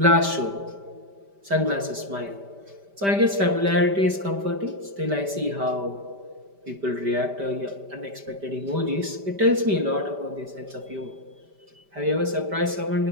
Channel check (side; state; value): left; late; 5.1 ms